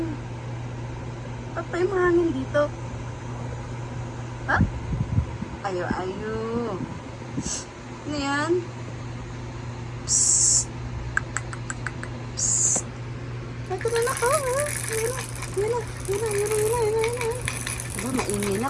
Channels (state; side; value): identical; both; correlation 1.00